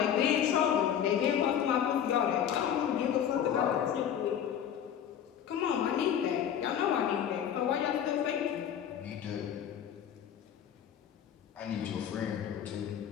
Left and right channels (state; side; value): quieter; right; 9.2 dB